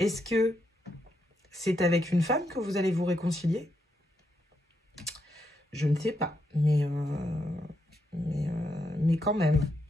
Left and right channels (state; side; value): normal; both; correlation 0.81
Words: que c'est avec une femme que vous allez vous réconcilier? Je ne sais pas. Mais quand même.